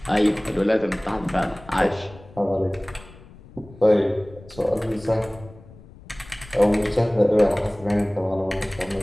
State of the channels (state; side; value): noise; left; rumble, 21 dB below the sound